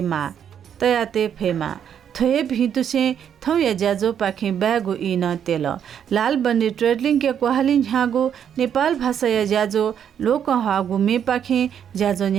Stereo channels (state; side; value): quieter; left; 8.7 dB